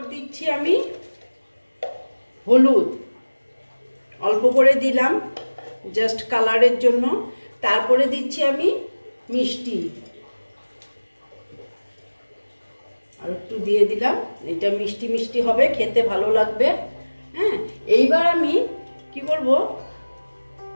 দিচ্ছি আমি হলুদ, অল্প করে দিলাম জাস্ট কালারের জন্য। তারপরে দিচ্ছি আমি মিষ্টি, আর একটু দিয়ে দিলাম। এটা মিষ্টি মিষ্টি হবে, খেতে ভালো লাগবে। হ্যাঁ, এইবার আমি কি করব,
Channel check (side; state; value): both; inverted; correlation -1.00